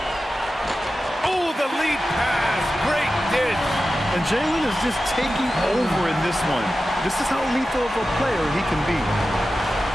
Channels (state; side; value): normal; both; correlation 0.93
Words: Oh, the lead pass. Great dish. And Jalen is just taking over in this one. This is how lethal of a player he can be.